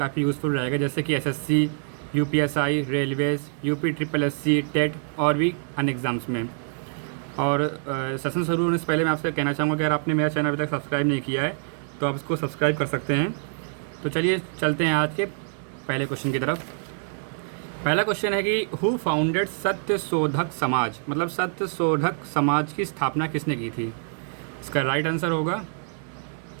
यूज़फुल रहेगा, जैसे कि SSC, UPSI, railways, UP triple SC, TET और भी अन्य एग्ज़ाम्स में। और सेशन शुरू होने से पहले मैं आपसे कहना चाहूँगा कि अगर आपने मेरा चैनल अभी तक सब्सक्राइब नहीं किया है तो आप इसको सब्सक्राइब कर सकते हैं। तो चलिए चलते हैं आज के पहले क्वेश्चन की तरफ। पहला क्वेश्चन है कि हु फाउंडेड सत्य शोधक समाज, मतलब सत्य शोधक समाज की स्थापना किसने की थी। इसका राइट आंसर होगा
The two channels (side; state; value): left; silent; digital silence